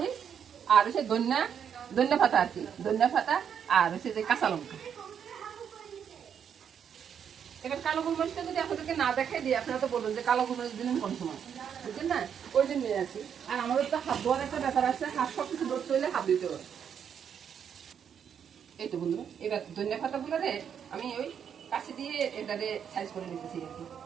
আর হচ্ছে ধনিয়া পাতা আর কি, ধনিয়া পাতা, আর হচ্ছে যে কাঁচা লঙ্কা। এবার কালো গোলমরিচটা যদি আপনাদেরকে না দেখাই দিই, আপনারা তো বলবেন যে কালো গোলমরিচ দিলেন কোন সময়, বুঝছেন না? ওই জন্য নিয়ে আসি। আর আমাদের তো হাত ধোয়ার একটা ব্যাপার আছে, হাত সব কিছু ধরতে হইলে হাত দিতে হবে। এই তো বন্ধুরা, এবার ধনিয়া পাতাগুলো রে আমি ওই কাছে দিয়ে এটারে সাইজ করে নিতেছি আর কি।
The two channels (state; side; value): quieter; left; 8.0 dB